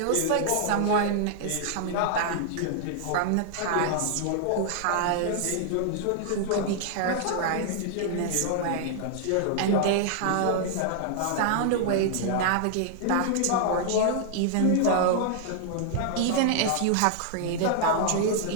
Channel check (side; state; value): both; different; correlation -0.01